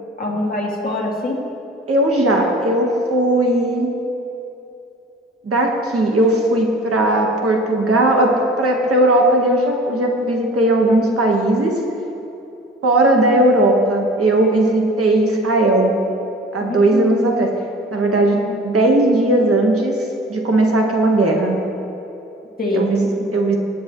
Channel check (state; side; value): normal; both; correlation 0.43